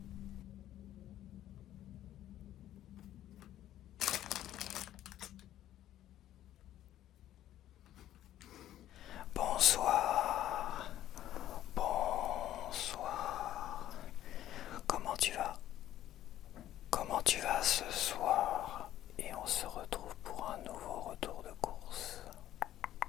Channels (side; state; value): right; quieter; 12.7 dB